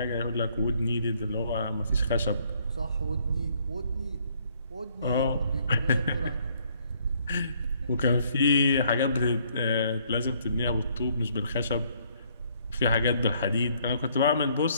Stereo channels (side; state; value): both; inverted; correlation -0.66